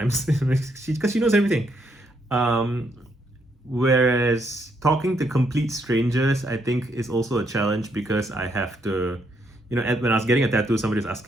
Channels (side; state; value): both; normal; correlation 0.74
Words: because she knows everything. Whereas talking to complete strangers, I think, is also a challenge, because I have to, when I was getting a tattoo, somebody was